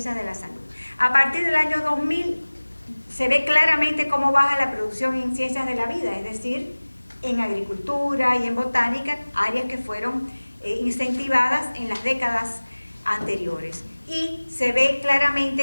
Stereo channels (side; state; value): both; inverted; correlation -1.00